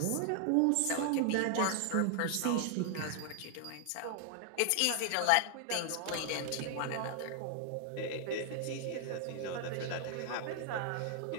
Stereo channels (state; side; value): different; both; correlation 0.00